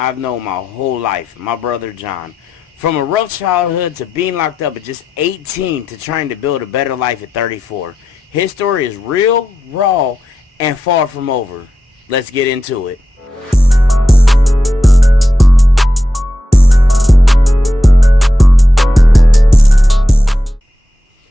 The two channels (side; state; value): both; normal; correlation 0.88